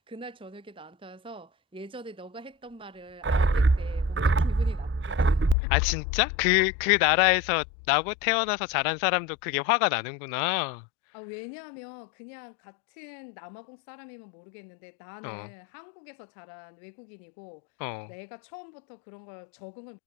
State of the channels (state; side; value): drops out; right; at 5.6 s